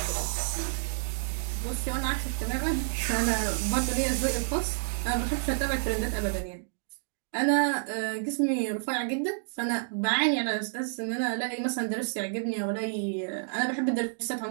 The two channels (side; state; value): left; silent; digital silence